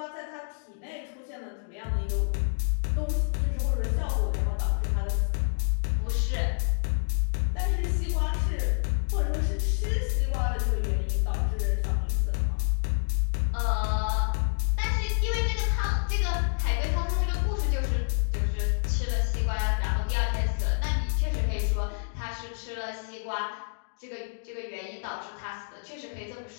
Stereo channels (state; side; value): silent; right; digital silence